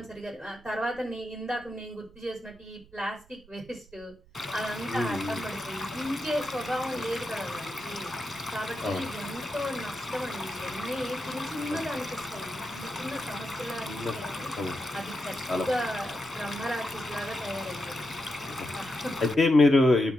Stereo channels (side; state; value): right; noise; rumble, 24 dB below the sound